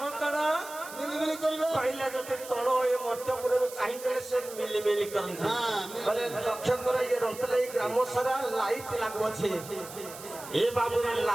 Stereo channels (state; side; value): noise; right; hiss, 14 dB below the sound